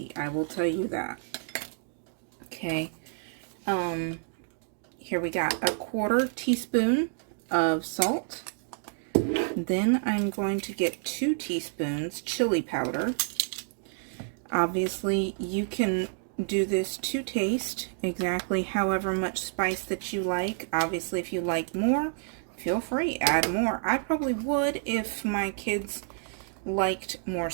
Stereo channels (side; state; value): left; silent; digital silence